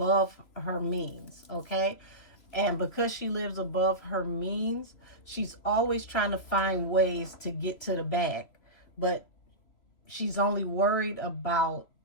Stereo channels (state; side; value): late; right; 3.0 ms